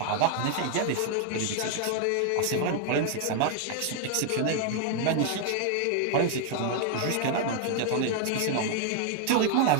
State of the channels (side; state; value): both; different; correlation 0.00